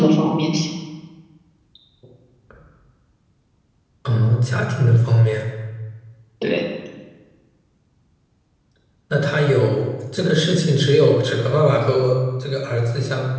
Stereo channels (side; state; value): both; identical; correlation 1.00